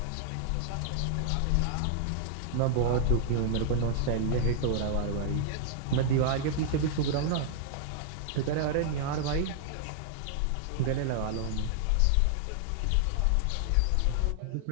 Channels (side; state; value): both; different; correlation -0.01